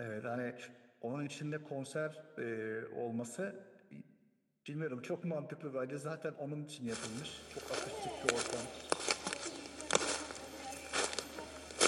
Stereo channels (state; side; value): identical; both; correlation 1.00